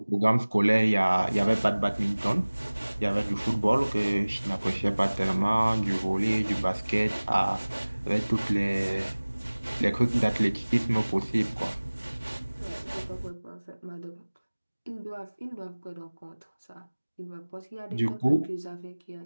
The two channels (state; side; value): inverted; both; correlation -1.00